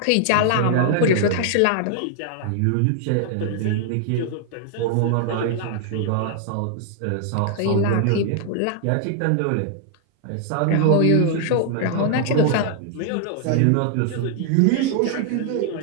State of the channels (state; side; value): different; both; correlation 0.00